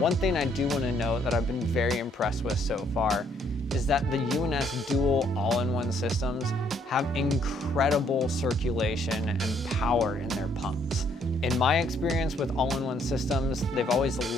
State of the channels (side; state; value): both; normal; correlation 0.67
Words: thing I do want to note that I've been very impressed with so far is that the UNS dual all-in-one systems have incredible circulation and power in their pumps. In my experience with all-in-one systems, they've always